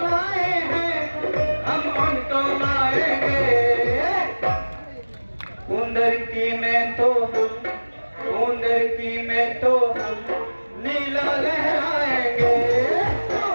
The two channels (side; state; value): both; inverted; correlation -1.00